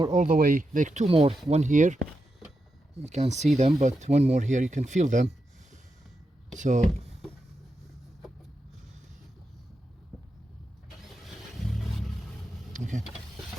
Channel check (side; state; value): both; normal; correlation 0.87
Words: all the way, like 2 more, one here, you can't see them, but one more here, you can feel them. So okay.